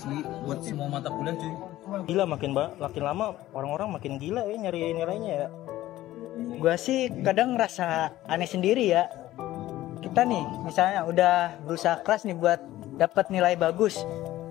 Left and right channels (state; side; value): quieter; right; 15.1 dB